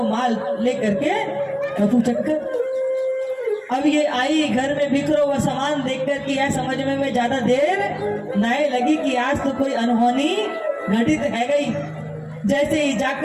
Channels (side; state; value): both; identical; correlation 1.00